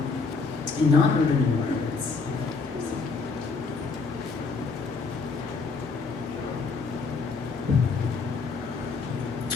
in non-urban environments.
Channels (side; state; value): right; quieter; 4.5 dB